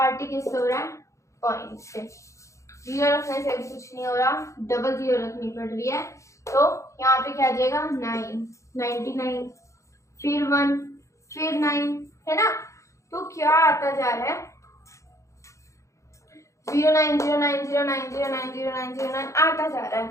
ही किससे हो रहा है, पॉइंट से। जीरो रखने से भी कुछ नहीं हो रहा, डबल जीरो रखनी पड़ रही है, तो यहाँ पे क्या आ जाएगा 99, फिर 1, फिर 9, है ना। तो क्या आता जा रहा है, 090909090909 आता जा रहा है,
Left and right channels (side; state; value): right; late; 0.15 ms